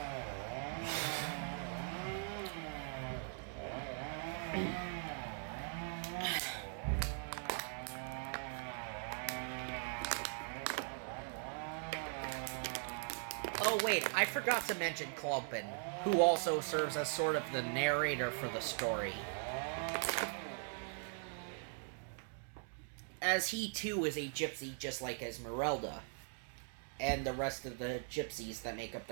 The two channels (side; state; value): left; silent; 51 dB below the other